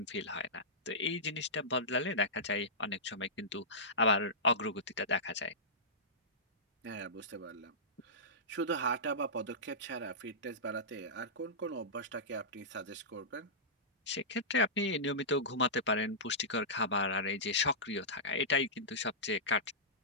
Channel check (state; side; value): normal; both; correlation -0.17